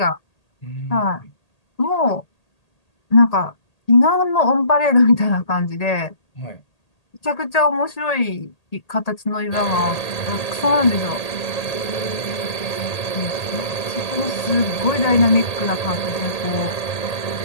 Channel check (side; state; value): right; late; 1.8 ms